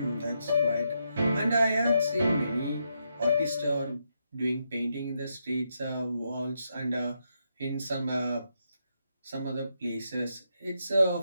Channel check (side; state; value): both; inverted; correlation -0.81